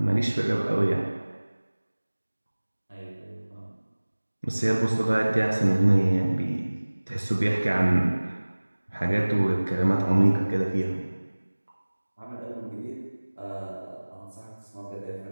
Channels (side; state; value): both; inverted; correlation -1.00